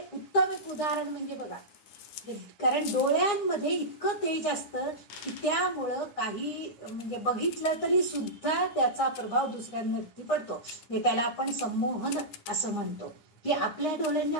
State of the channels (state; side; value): late; right; 9.8 ms